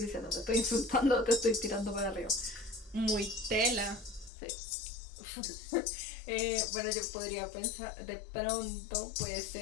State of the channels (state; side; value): drops out; right; at 4.3 s